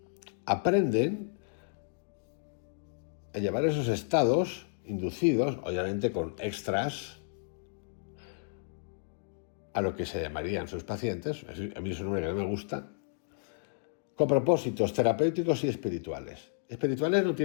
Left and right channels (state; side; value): silent; right; digital silence